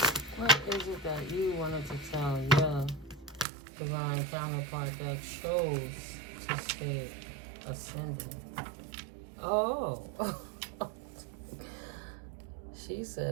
What is it that you wanted to tell your divine counterpart that chose to stay ascending? Oh. She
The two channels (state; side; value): drops out; left; at 3.5 s